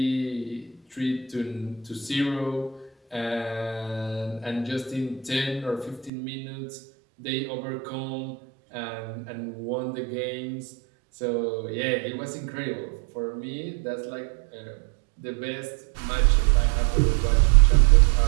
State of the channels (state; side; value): drops out; left; at 6.1 s